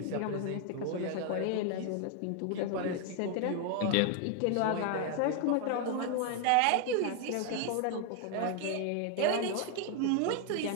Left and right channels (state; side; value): different; both; correlation 0.00